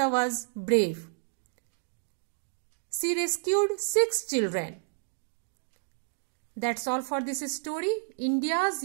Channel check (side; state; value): left; silent; digital silence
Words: was brave. She rescued 6 children. That's all for this story, India's